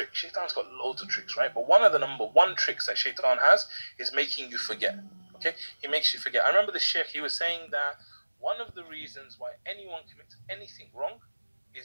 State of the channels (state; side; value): inverted; both; correlation -1.00